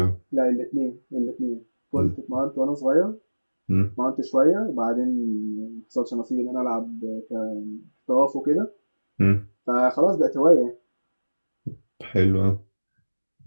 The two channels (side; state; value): both; inverted; correlation -1.00